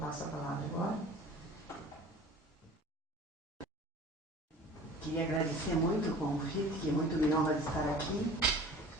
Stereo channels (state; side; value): normal; both; correlation 0.43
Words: a palavra agora. Queria agradecer muito o convite, que muito me honra de estar aqui,